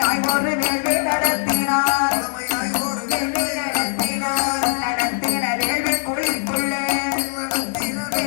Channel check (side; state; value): right; silent; digital silence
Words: ஒரு வேள்வி நடத்தினார். நடத்தின வேள்வி குழிக்குள்ளே